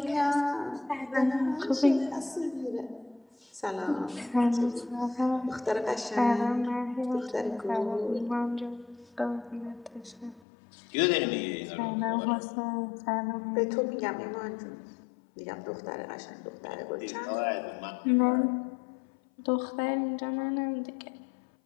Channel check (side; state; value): right; drops out; at 10.4 s